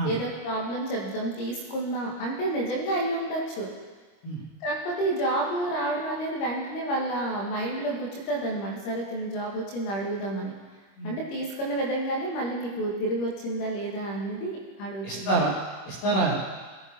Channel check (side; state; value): right; late; 25 ms